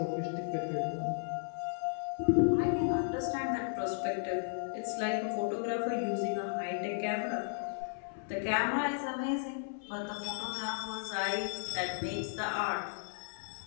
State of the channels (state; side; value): silent; right; 55 dB below the other